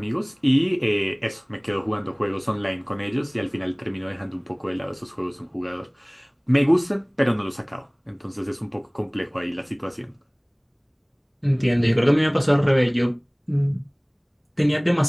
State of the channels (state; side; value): identical; both; correlation 1.00